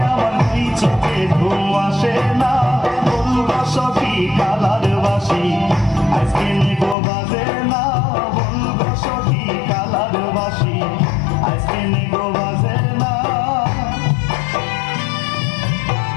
আমার কি চোখে ঘুম আসে না বলবো সখী কালার বাসি আজকে নিগো বাজে না বলবো সখী কালার বাসি আজকে নিগো বাজে না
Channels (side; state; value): right; drops out; at 7.0 s